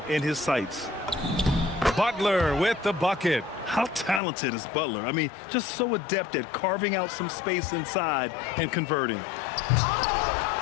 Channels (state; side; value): drops out; right; at 4.2 s